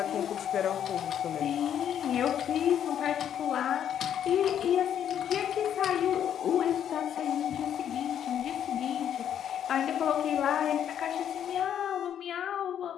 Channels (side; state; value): right; quieter; 9.6 dB